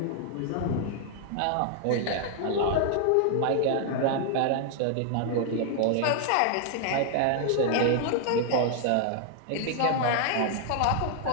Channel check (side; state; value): both; different; correlation 0.00